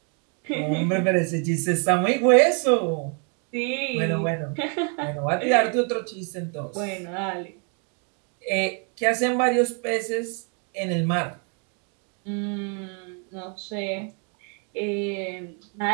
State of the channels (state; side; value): quieter; left; 39.9 dB